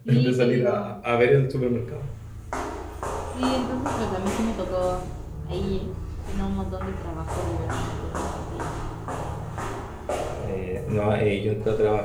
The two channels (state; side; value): identical; both; correlation 1.00